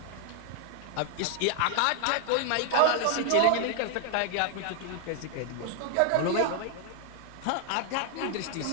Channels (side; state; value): both; different; correlation 0.00